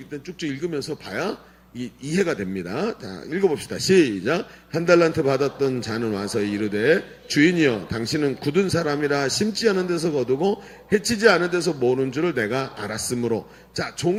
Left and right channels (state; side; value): identical; both; correlation 1.00